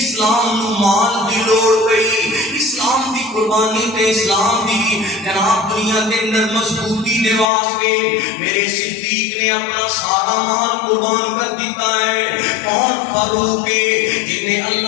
نو مال دی لوڑ پئی، اسلام دی قربانی تے اسلام دی جناب دنیا دے اندر مضبوطی دے واسطے میرے صدیق نے اپنا سارا مال قربان کر دیتا ہے۔ کون فاروق ہے جن نے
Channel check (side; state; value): right; drops out; at 7.5 s